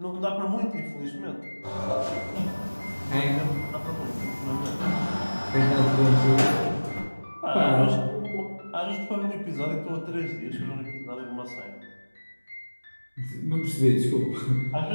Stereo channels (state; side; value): inverted; both; correlation -1.00